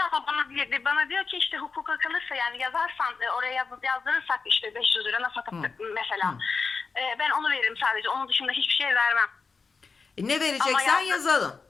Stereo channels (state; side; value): quieter; right; 4.8 dB